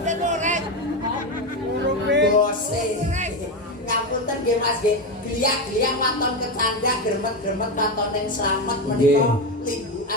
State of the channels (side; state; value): both; normal; correlation 0.13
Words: Bose. Ngapunten nggih Mas nggih. Gliak-gliak waton kecanda gremet-gremet waton ning slamet menika